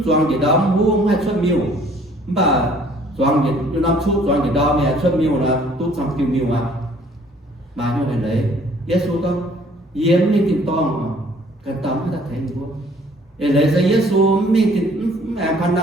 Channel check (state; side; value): normal; both; correlation 0.57